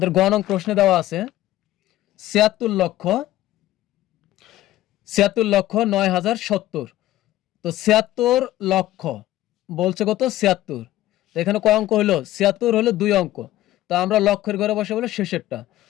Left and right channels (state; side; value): quieter; right; 14.9 dB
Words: গ নং প্রশ্নে দেওয়া আছে 76,09,070। তো 76 লক্ষ বলছে কত, 76। তো এখানে কয় অঙ্ক হলো, 76 হলো 2 অঙ্ক। তো আমরা লক্ষের ঘরে বসে বলে শেষেরটা।